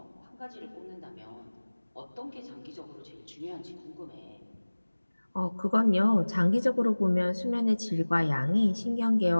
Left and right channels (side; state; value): both; inverted; correlation -1.00